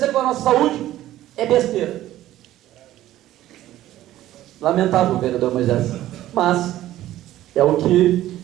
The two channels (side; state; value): left; quieter; 14.1 dB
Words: com a nossa saúde, é besteira. Lamentável, vereador Moisés, mas é o